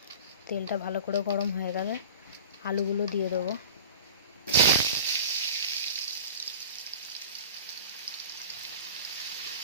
তেলটা ভালো করে গরম হয়ে গেলে আলুগুলো দিয়ে দেবো।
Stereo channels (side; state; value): both; inverted; correlation -0.37